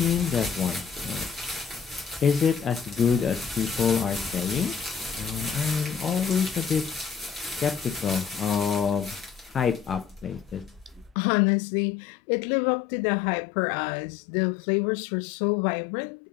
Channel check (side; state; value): right; drops out; at 11.2 s